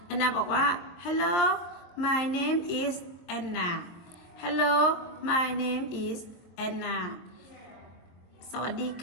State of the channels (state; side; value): late; right; 23 ms